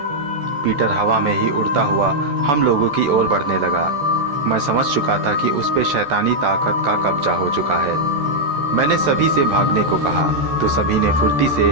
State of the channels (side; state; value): left; late; 14 ms